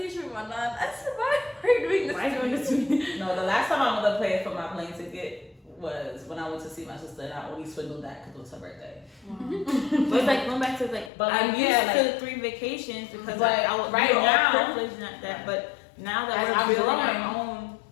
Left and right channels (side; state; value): right; drops out; at 11.1 s